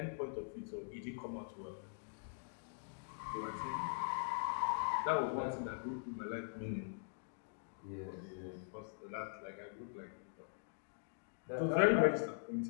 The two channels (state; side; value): silent; right; digital silence